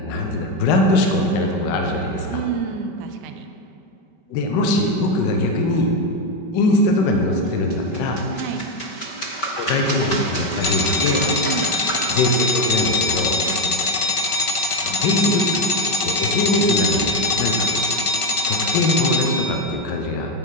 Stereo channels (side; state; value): right; late; 5.3 ms